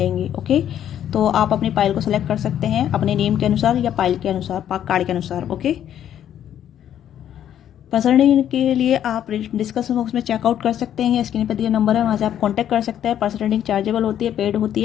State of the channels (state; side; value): quieter; right; 10.4 dB